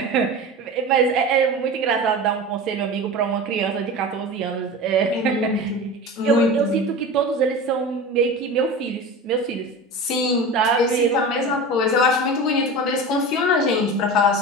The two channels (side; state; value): both; normal; correlation 0.30